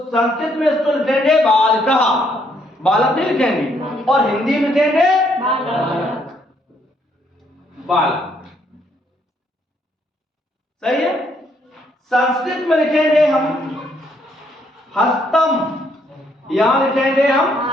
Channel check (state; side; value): normal; both; correlation 0.71